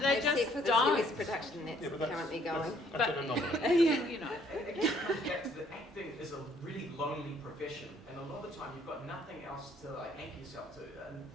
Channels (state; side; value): normal; both; correlation 0.64